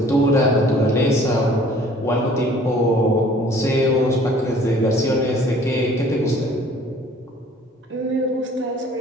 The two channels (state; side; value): normal; both; correlation 0.53